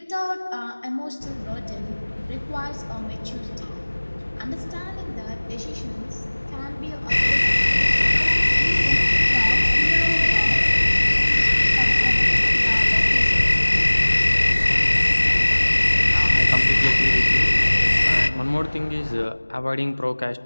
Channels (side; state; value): both; inverted; correlation -1.00